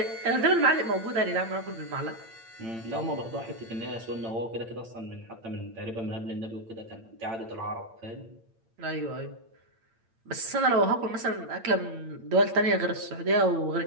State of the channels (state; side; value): late; left; 8.8 ms